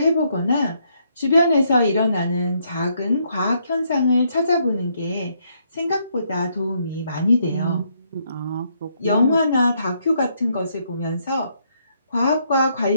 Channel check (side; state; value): both; inverted; correlation -0.73